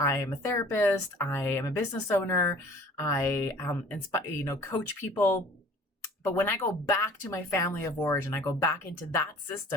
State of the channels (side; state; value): both; normal; correlation 0.49